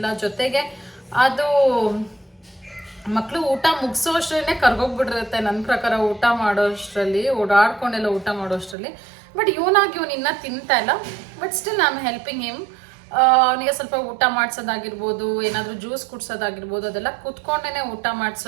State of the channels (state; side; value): drops out; left; at 8.8 s